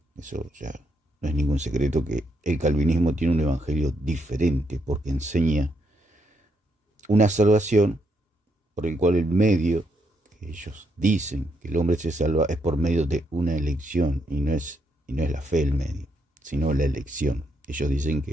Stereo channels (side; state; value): both; normal; correlation 0.77